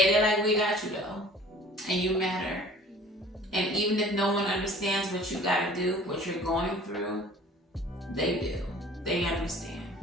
they're like, we got you though. And you matter. And even if no one understands what you gotta do, what you're going through, they do. They understand.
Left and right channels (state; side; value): normal; both; correlation 0.48